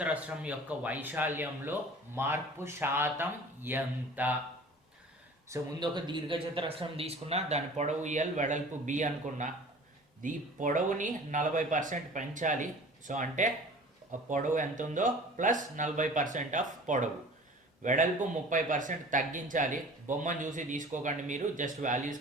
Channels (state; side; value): normal; both; correlation 0.44